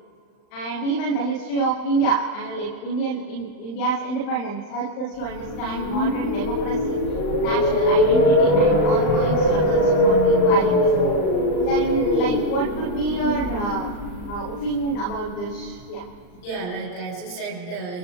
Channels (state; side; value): late; right; 39 ms